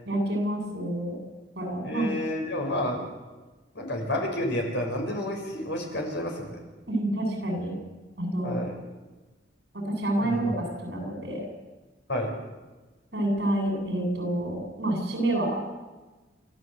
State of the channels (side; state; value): both; normal; correlation 0.53